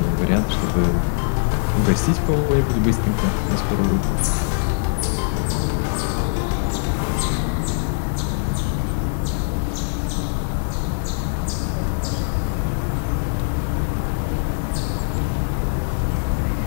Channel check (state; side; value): silent; right; 58 dB below the other